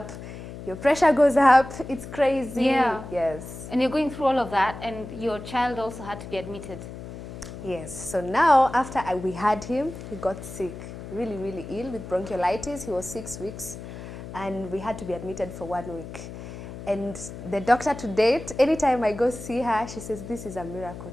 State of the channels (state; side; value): noise; left; hum, 11 dB below the sound